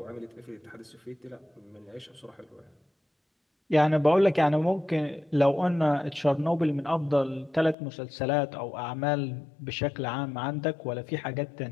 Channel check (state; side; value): drops out; right; at 7.8 s